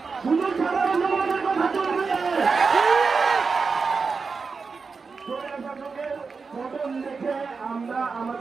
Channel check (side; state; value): left; quieter; 4.8 dB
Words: শুধু সাধারণ জনগণের কথা চলবে। শাসকের পতন দেখে আমরা